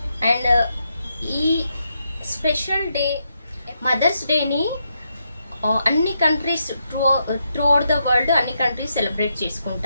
And ఈ special day mothers డేని అన్ని countries throughout the world అన్ని countries celebrate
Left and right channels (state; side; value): inverted; both; correlation -0.81